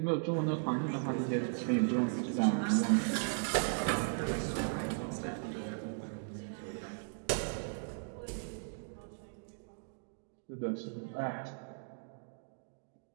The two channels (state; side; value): silent; left; digital silence